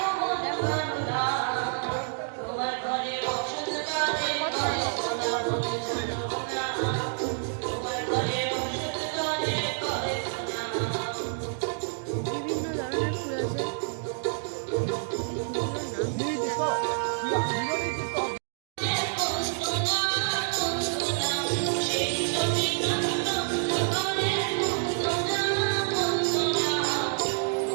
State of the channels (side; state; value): left; silent; digital silence